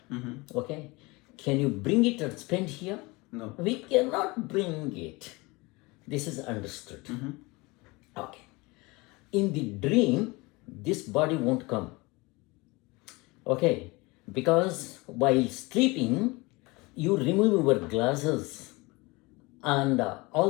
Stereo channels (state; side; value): quieter; right; 24.3 dB